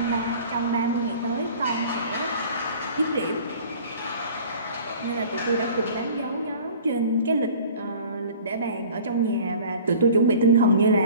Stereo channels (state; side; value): inverted; both; correlation -0.46